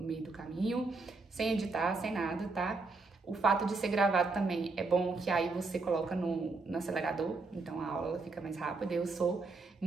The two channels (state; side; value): quieter; left; 3.8 dB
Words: meio do caminho, sem editar, sem nada, tá? O fato de ser gravado também é bom que aí você coloca no acelerador, então a aula fica mais rápida. Eu sou